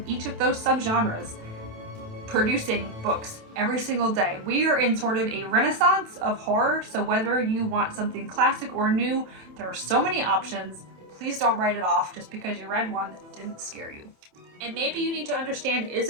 each of those subgenres producing books every single day. We are in sort of a renaissance of horror, so whether you want something classic or new, there are so many options. Please don't write it off just because you read one that didn't scare you. And maybe you need to understand, is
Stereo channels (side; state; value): left; late; 27 ms